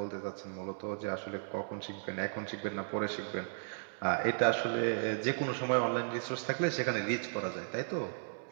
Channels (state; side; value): silent; left; digital silence